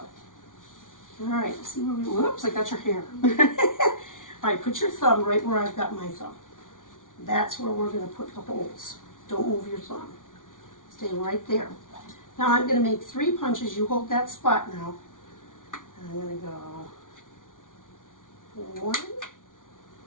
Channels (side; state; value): right; late; 0.88 ms